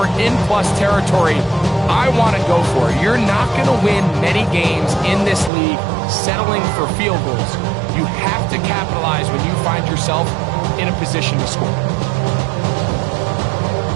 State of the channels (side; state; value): left; drops out; at 5.5 s